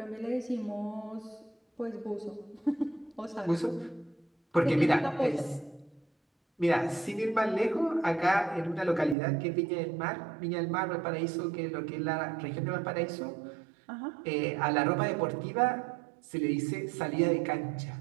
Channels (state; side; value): drops out; left; at 9.2 s